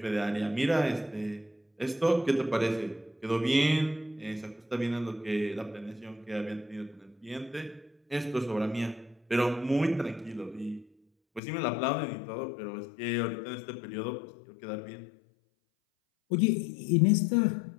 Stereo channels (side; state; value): right; drops out; at 11.4 s